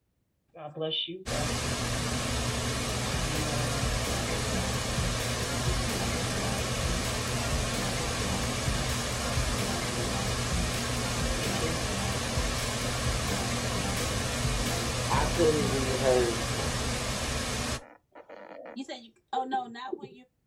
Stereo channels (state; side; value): identical; both; correlation 1.00